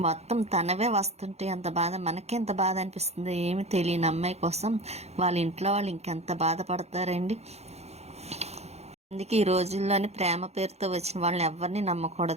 మొత్తం తనవే వస్తుంటే ఎంత బాధ, మనకి ఎంత బాధ అనిపిస్తుంది. ఏమి తెలియని అమ్మాయి కోసం వాళ్ళ ఇంట్లో వాళ్ళు ఇంకెంత బాధపడతారండి. అందుకే ఈ రోజుల్లోని ప్రేమ పేరుతో వచ్చిన వాళ్ళని ఎవరిని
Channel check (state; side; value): late; left; 0.31 ms